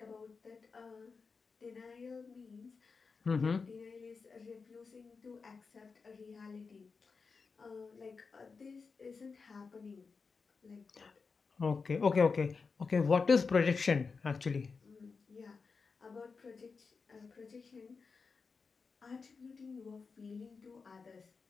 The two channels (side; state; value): right; quieter; 4.9 dB